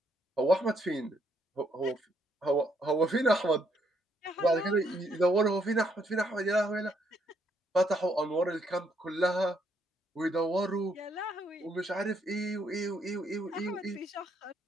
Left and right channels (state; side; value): normal; both; correlation 0.72